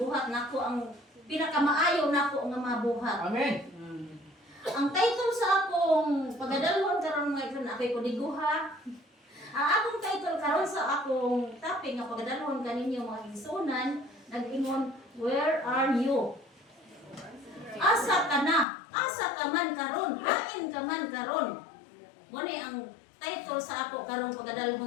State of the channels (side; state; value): right; drops out; at 18.7 s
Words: nako ang pinakamaayo nako nga mabuhat. Amen. Ang title sa akong pagadalhon karon nga ito na ako'y kuniguha. Ang akong title karon sa akong topic nga pagadalhon kaninyo mga igsunan nag-ingon, where are you? Asa ka na? Asa ka man karon? Hain ka man karon? Muna ang title sa ako karon